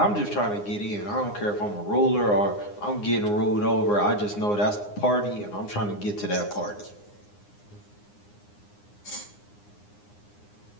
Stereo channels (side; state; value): right; late; 9.7 ms